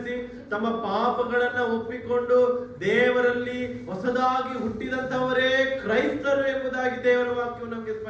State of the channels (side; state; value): both; identical; correlation 1.00